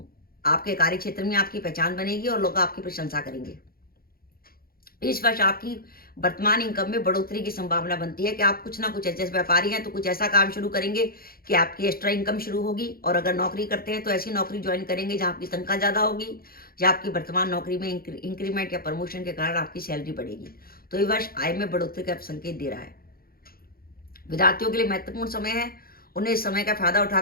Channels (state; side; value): late; right; 0.43 ms